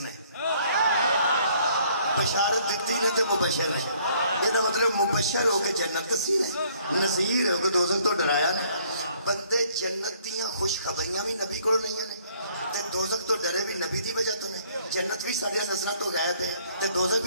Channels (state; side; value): inverted; both; correlation -0.62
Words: بشارت دیتی نے تے مبشر نے یہ مطلب مبشر ہو کے جنت دسی ہے نذیر ہو کے دوزخ تو ڈرایا نے بندے جنت دیاں خوشخبریاں بھی نبی کو نہیں ہیں تے دوزخ تو ڈرے بھی نبی دی وجہ تو نے جنت بھی ساڈیاں نظراں تو غائب ہے تے دوزخ